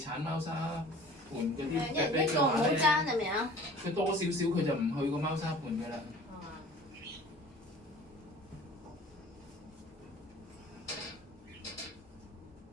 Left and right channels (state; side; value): normal; both; correlation 0.46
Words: 貓砂盤嗰啲一人一個唔好爭係咪啊？佢多少少佢就唔去個貓砂盤㗎啦。